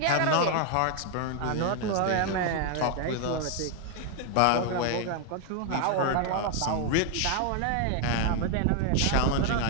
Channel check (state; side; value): different; both; correlation 0.00